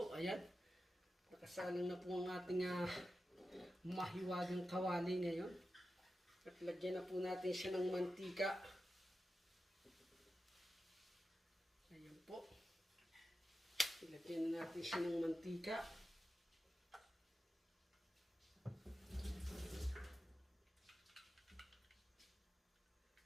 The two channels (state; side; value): normal; both; correlation 0.91